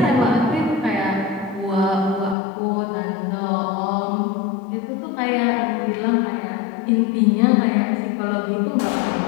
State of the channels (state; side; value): drops out; right; at 2.4 s